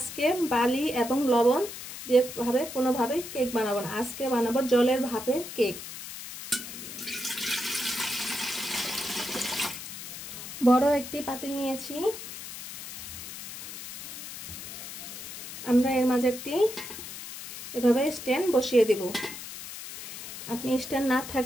বালি এবং লবণ দিয়ে কোনোভাবে কেক বানাবো না। আজকে বানাবো জলের ভাপে কেক। বড় একটি পাতিল নিয়েছি। আমরা এর মাঝে একটি এভাবে স্ট্যান্ড বসিয়ে দেব। আপনি স্ট্যান্ড না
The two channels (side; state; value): left; noise; hiss, 10 dB below the sound